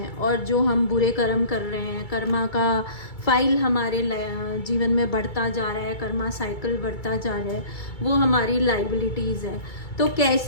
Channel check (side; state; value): right; late; 2.3 ms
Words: और जो हम बुरे कर्म कर रहे हैं, कर्मा का फाइल हमारे जीवन में बढ़ता जा रहा है, कर्मा साइकिल बढ़ता जा रहा है, वो हमारी लाइबिलिटीज़ है। तो